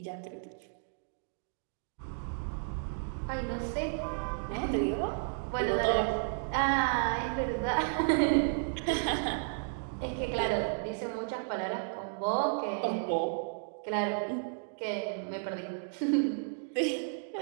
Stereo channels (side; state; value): left; silent; digital silence